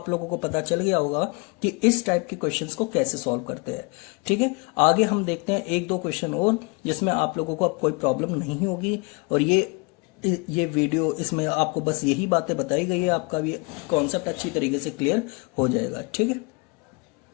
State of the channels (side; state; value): right; quieter; 29.7 dB